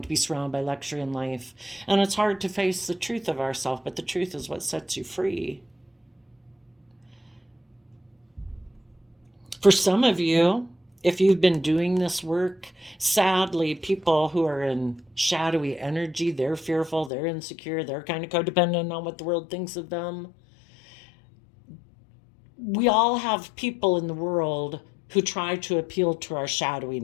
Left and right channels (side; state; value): right; drops out; at 17.1 s